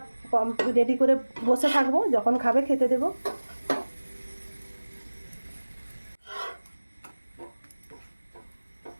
রেডি করে বসে থাকবো, যখন খাবে খেতে দেবো।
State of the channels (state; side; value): inverted; both; correlation -1.00